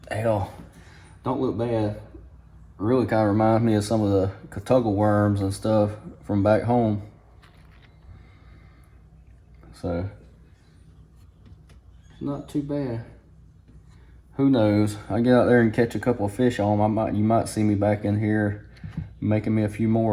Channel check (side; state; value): both; identical; correlation 1.00